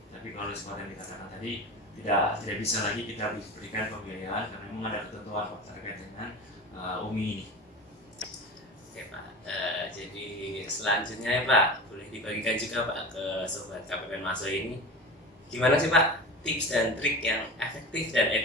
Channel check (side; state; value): both; normal; correlation 0.31